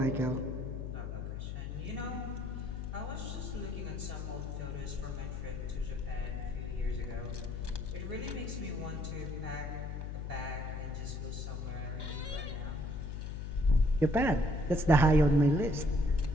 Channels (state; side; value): noise; left; hum, 5 dB below the sound